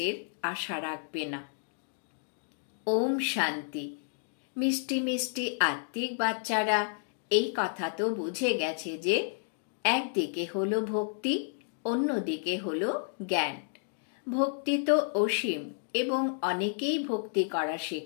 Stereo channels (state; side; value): silent; right; digital silence